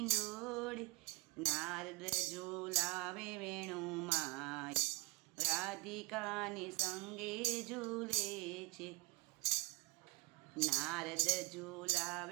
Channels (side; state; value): left; quieter; 22.1 dB